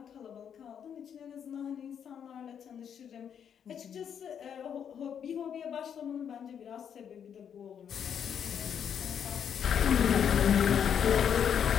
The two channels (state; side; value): quieter; right; 8.2 dB